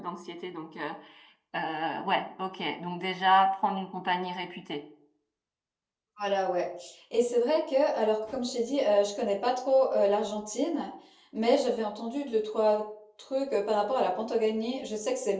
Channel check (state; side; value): identical; both; correlation 1.00